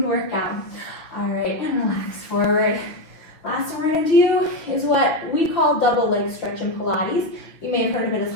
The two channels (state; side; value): late; right; 6.1 ms